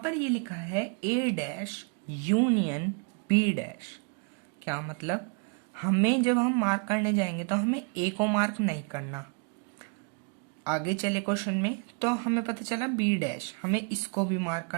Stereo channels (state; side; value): quieter; left; 36.4 dB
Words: ये लिखा है ए डैश यूनियन बी डैश। क्या मतलब, हमें जब हम मार्क करने जाएंगे तो हमें ए को मार्क नहीं करना। आगे चले क्वेश्चन में तो हमें पता चला बी डैश, हमें इसको भी मार्क